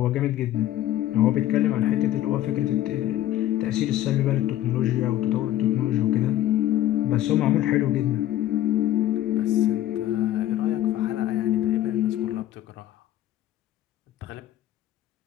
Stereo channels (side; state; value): right; quieter; 13.3 dB